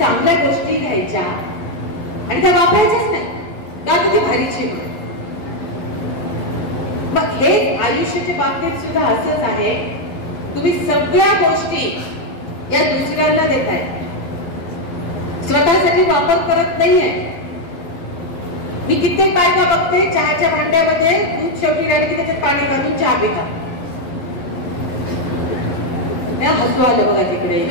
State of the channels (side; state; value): right; late; 11 ms